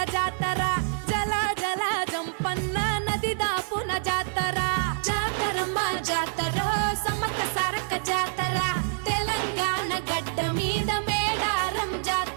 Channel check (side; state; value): left; silent; 60 dB below the other